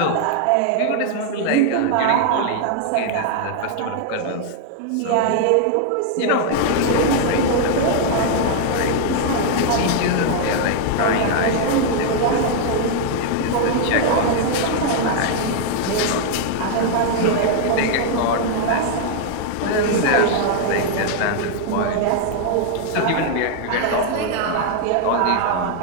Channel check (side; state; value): both; different; correlation 0.00